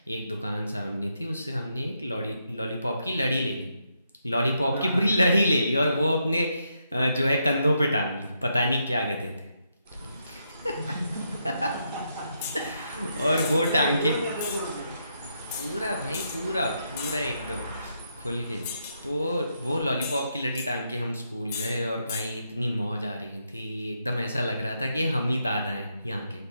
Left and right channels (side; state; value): both; inverted; correlation -0.80